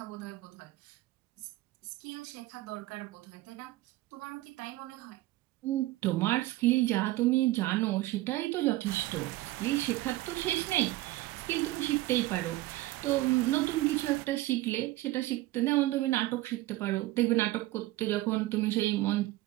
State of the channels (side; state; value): left; quieter; 17.5 dB